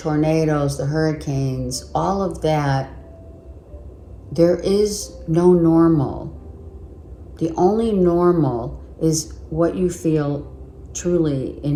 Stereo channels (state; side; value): identical; both; correlation 1.00